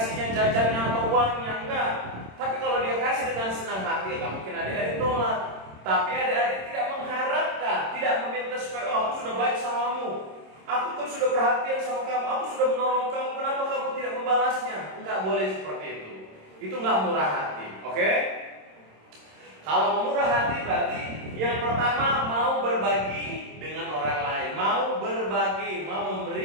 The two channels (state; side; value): late; left; 26 ms